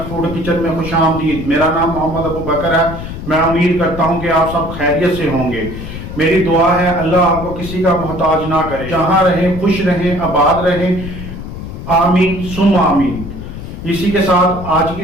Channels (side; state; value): left; noise; rumble, 9 dB below the sound